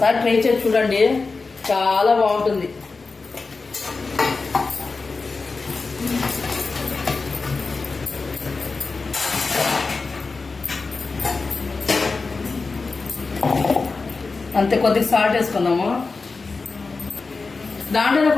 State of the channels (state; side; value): quieter; right; 4.1 dB